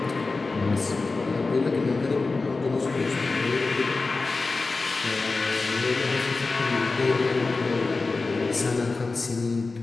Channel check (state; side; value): quieter; right; 3.8 dB